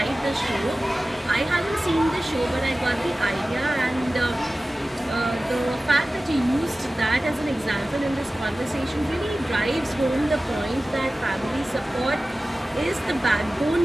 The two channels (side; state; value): both; normal; correlation 0.96